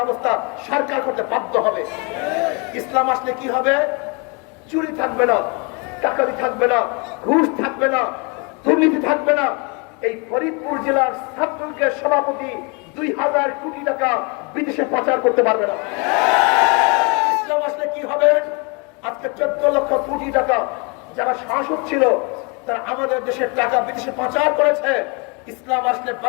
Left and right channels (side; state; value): right; quieter; 32.0 dB